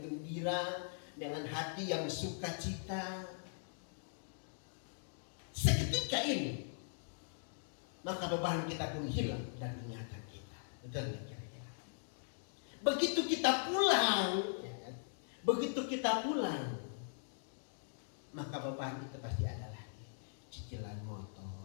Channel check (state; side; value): silent; right; digital silence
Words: gembira, dengan hati yang sukacita. Seketika ini, maka beban kita pun hilang dan ingatan kita. Betul nggak kira-kira? Begitu kita pulang, maka beban itu pasti ada lagi. Cicilan